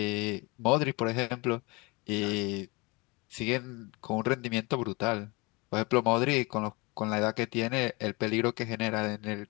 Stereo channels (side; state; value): right; quieter; 26.6 dB